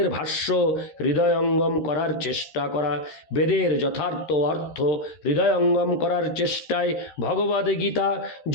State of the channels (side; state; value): right; late; 13 ms